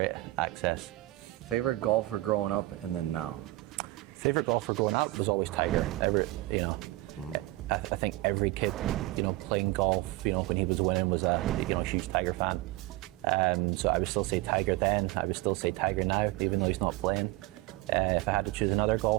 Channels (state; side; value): quieter; left; 19.3 dB